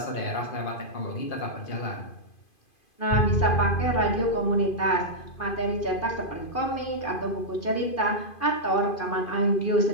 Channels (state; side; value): late; right; 2.5 ms